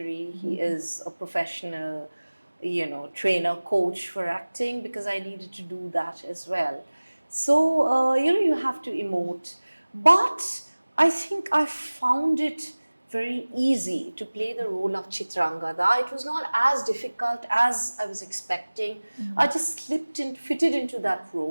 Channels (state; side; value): inverted; both; correlation -1.00